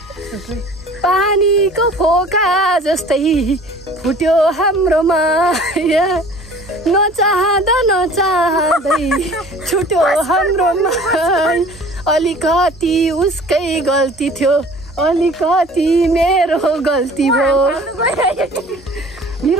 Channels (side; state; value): both; normal; correlation 0.48